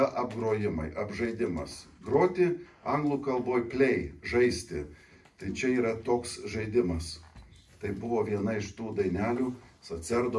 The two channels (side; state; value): both; identical; correlation 1.00